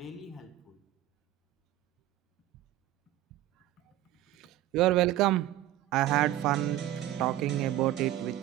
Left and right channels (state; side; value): quieter; left; 13.9 dB